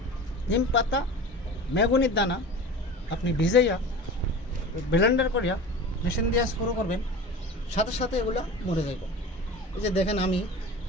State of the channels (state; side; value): normal; both; correlation 0.35